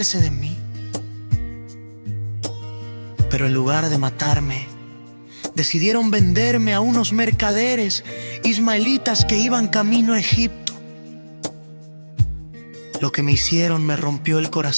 de mí. Pero en lugar de matarme, decidieron venderme a unos mercaderes ismaelitas que iban camino a Egipto. Lo que me hicieron me rompió el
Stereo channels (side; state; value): both; inverted; correlation -1.00